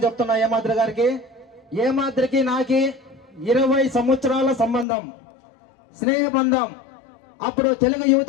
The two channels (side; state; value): right; drops out; at 4.9 s